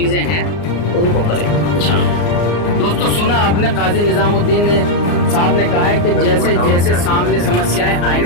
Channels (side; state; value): right; late; 34 ms